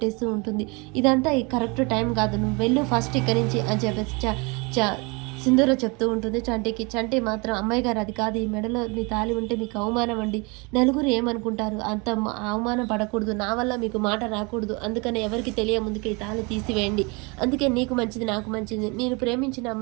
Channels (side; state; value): left; quieter; 29.0 dB